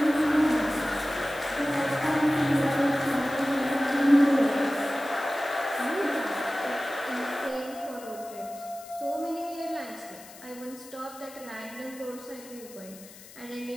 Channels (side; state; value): left; noise; hiss, 19 dB below the sound